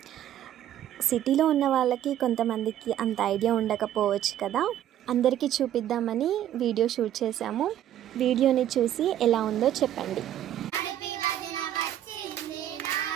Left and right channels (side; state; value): left; quieter; 11.6 dB